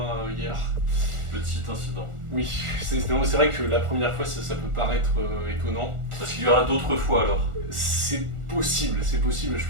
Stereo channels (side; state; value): left; late; 1.4 ms